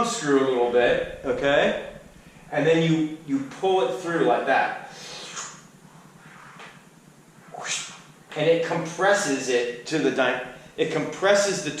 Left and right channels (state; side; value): identical; both; correlation 1.00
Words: screw a little bit, okay? And then you pull it through like that. And it compresses it to it compresses the